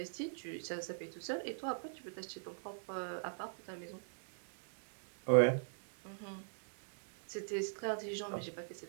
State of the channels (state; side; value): silent; left; digital silence